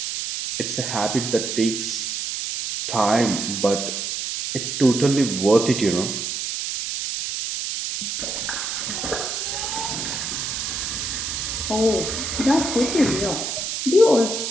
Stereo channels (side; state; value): right; noise; hiss, 3 dB below the sound